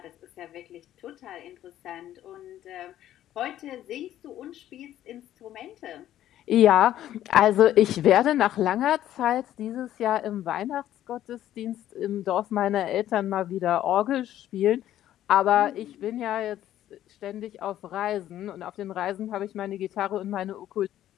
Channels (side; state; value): right; quieter; 12.4 dB